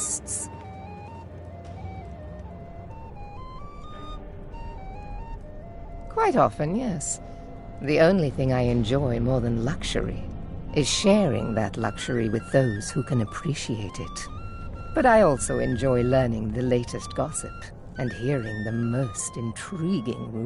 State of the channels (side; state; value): both; identical; correlation 1.00